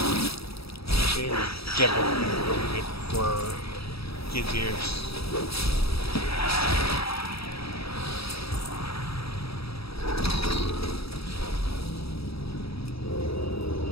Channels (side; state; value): right; late; 0.77 ms